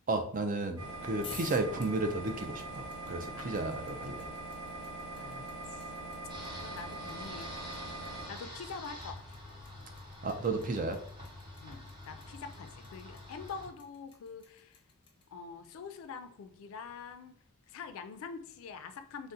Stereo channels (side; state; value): both; normal; correlation 0.23